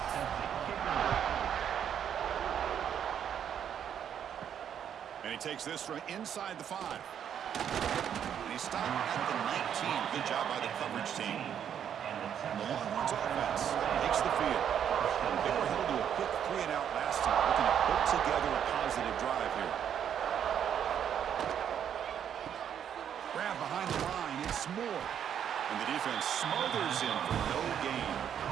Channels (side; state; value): left; quieter; 9.0 dB